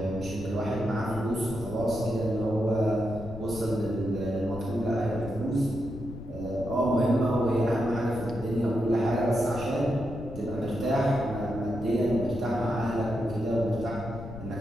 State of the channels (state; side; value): noise; left; rumble, 11 dB below the sound